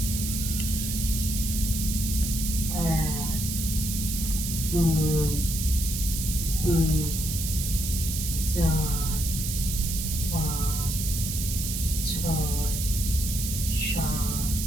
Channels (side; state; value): right; noise; hiss, 4 dB below the sound